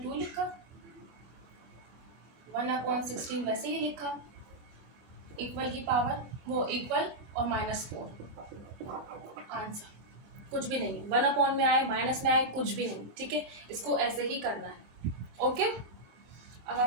लिखा, 1/16 वैसे ही लिखा, इक्वल की पावर वो इक्वल और -4 आंसर, कुछ भी नहीं, 1 में आए माइनस में आए कुछ भी नहीं। ठीक है, इसको ऐसे ही करना है। ओके, अब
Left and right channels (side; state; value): left; late; 25 ms